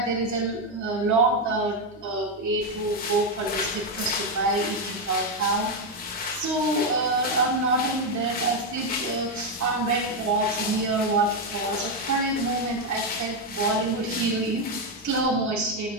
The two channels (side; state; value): both; normal; correlation 0.05